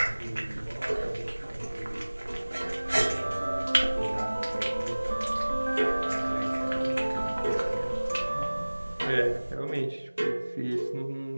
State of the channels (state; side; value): inverted; both; correlation -1.00